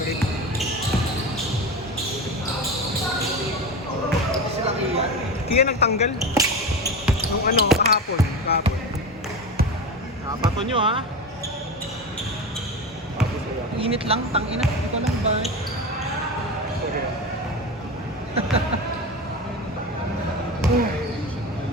Kaya nagtanggal. Nung ano, kahapon. Bato nyo ha. Init lang, tangina. Ito lang ba?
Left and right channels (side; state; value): both; normal; correlation 0.24